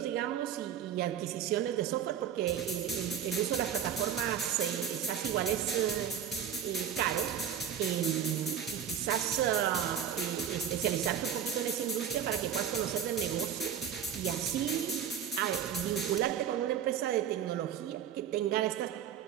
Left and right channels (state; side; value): quieter; left; 8.9 dB